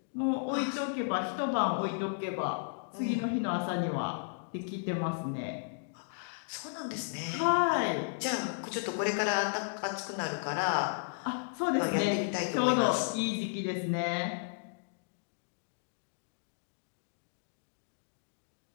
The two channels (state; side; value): silent; right; digital silence